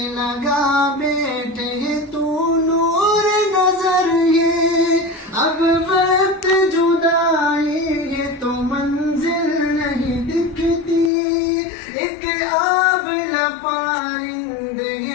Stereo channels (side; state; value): right; drops out; at 11.1 s